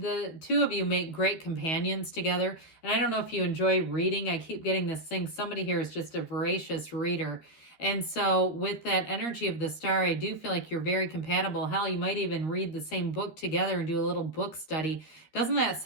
two of you make great companions together. And I don't know if you enjoy reading. I keep getting this thing. Somebody here is just a voracious reader. And so with that energy of the Star, I do feel like you're very compatible. Hell, you might even read the same book together and do a little book study. Doesn't that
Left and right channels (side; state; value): right; late; 13 ms